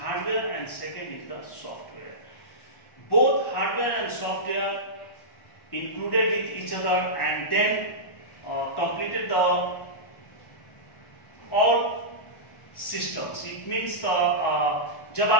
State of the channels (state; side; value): late; right; 1.1 ms